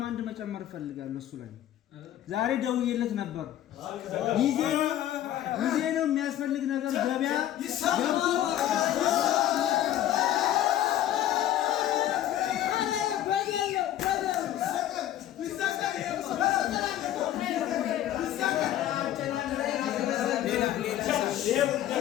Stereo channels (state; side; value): quieter; right; 12.4 dB